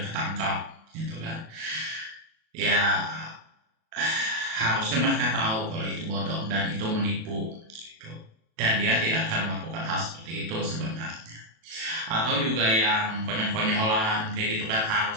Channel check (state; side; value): late; left; 37 ms